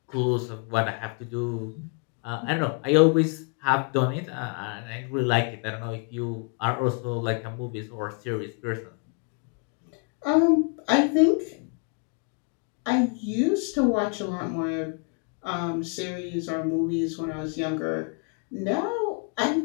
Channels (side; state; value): right; quieter; 37.2 dB